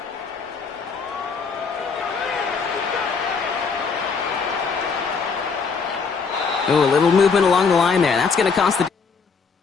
Oh, a little movement along the line there. That's going to cost the...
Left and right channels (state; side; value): quieter; right; 5.3 dB